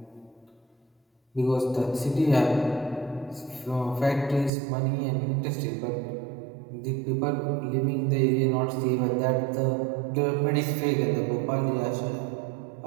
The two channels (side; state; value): left; drops out; at 4.5 s